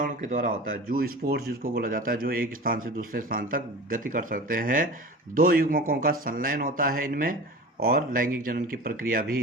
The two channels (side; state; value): both; normal; correlation 0.35